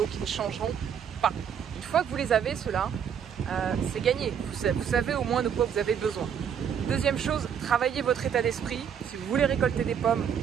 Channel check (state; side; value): quieter; left; 8.0 dB